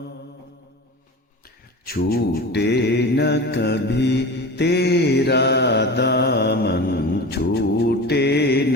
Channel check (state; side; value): normal; both; correlation 0.32